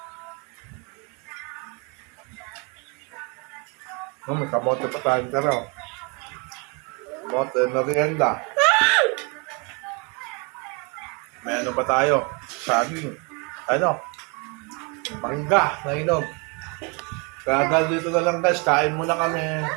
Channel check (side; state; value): left; quieter; 32.2 dB